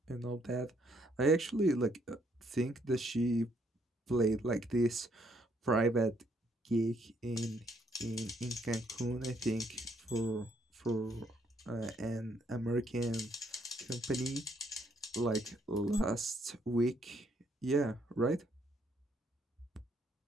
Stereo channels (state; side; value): normal; both; correlation 0.70